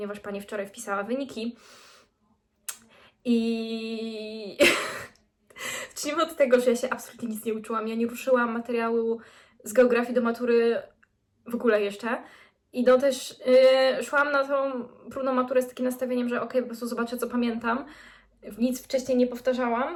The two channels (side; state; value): both; identical; correlation 1.00